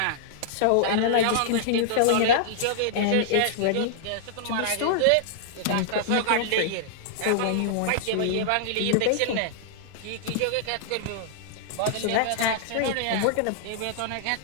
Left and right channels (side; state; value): both; different; correlation -0.01